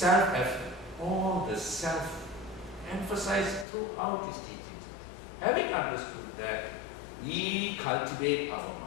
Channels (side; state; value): right; drops out; at 3.7 s